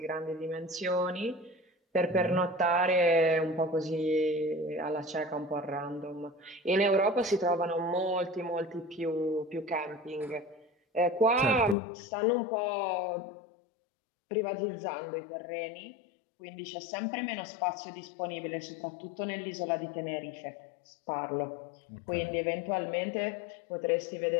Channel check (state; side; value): drops out; right; at 11.8 s